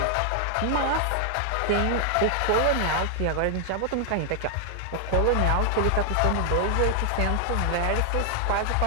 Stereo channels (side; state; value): both; different; correlation 0.00